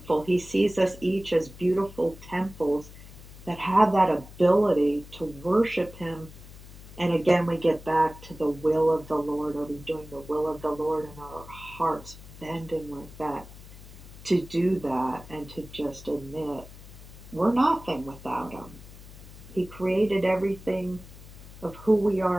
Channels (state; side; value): noise; left; hum, 17 dB below the sound